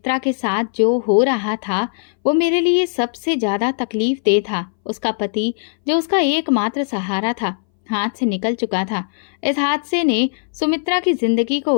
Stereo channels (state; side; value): silent; right; 62 dB below the other